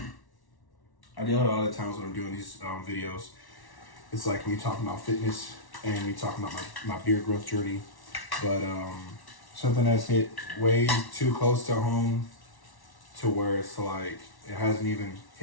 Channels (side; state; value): right; late; 1.1 ms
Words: deal with a lot of times when I'm doing these videos. It's like me talking about fitness and me talking about my beard growth journey. But something that's hit way too close to home to where it's like it hasn't even